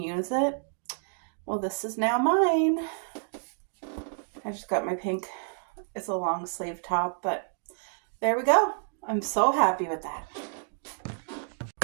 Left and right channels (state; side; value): silent; left; 58 dB below the other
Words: use it? Well, this is now mine. I just got my pink. It's a long sleeve top, but there we go. I'm so happy with that.